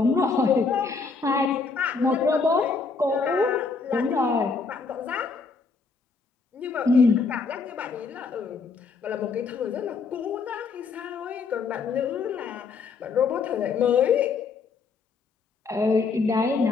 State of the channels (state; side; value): quieter; right; 4.7 dB